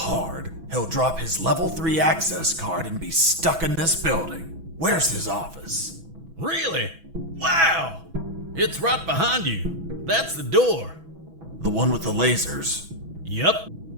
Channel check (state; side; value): late; left; 6.1 ms